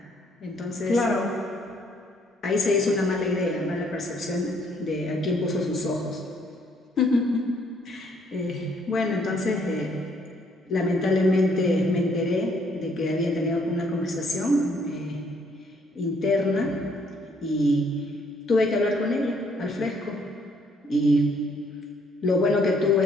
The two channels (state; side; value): normal; both; correlation 0.66